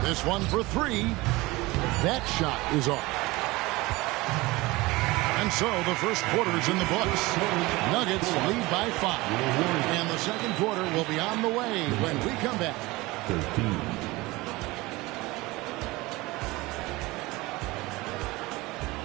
This one for three. That shot is off. And so the first quarter is in the books. Nuggets lead by 5. And the second quarter will be on the way when we come back. 13.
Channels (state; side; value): quieter; left; 21.4 dB